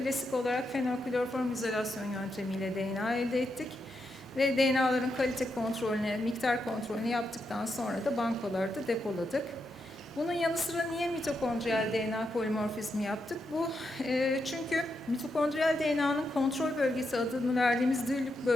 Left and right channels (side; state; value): both; normal; correlation 0.84